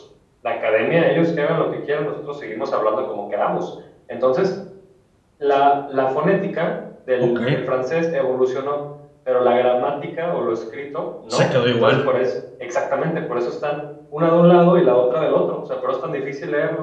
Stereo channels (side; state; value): both; identical; correlation 1.00